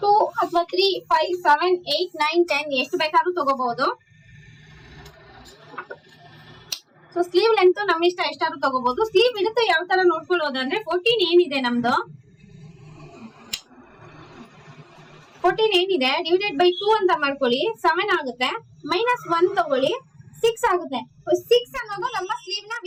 2 ಅಥವಾ 3, 5, 7, 8, 9, 10 ಎಷ್ಟು ಬೇಕಾದ್ರೂ ತಗೋಬಹುದು. ಸೊ ಸ್ಲೀವ್ ಲೆಂತ್ ನಮ್ಮ ಇಷ್ಟ, ಎಷ್ಟಾದ್ರೂ ತಗೋಬಹುದು. ಸ್ಲೀವ್ ಇಡುತ್ತೆ ಯಾವ ತರ ನೋಡ್ಕೊಳ್ಳೋದಂದ್ರೆ 14 ಏನಿದೆ ನಮ್ದು 14 ಏನಿದೆ ಡಿವೈಡೆಡ್ ಬೈ 2 ಅಂತ ಮಾಡ್ಕೊಳ್ಳಿ, 7 ಆಗುತ್ತೆ. -1 ತಗೊಳ್ಳಿ, 6 ಆಗುತ್ತೆ. 6 ಅನ್ನೋದು ನಮ್ಮ ಸ್ಲೀವ್ ನ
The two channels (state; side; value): identical; both; correlation 1.00